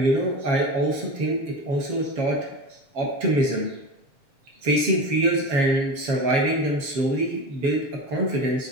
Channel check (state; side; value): late; left; 7.2 ms